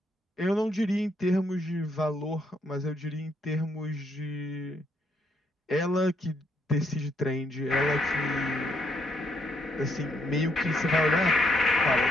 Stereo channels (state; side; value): normal; both; correlation 0.74